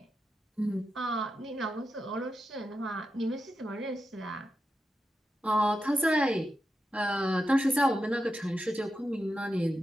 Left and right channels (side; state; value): both; normal; correlation 0.88